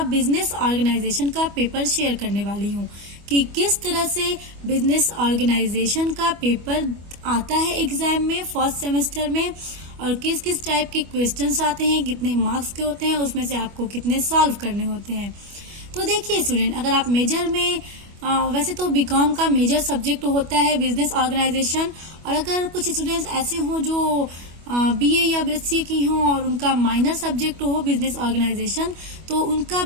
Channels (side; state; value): left; late; 25 ms